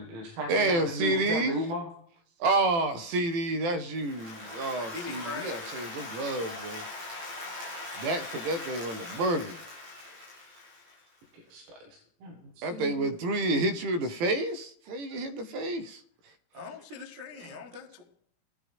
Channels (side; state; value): left; late; 17 ms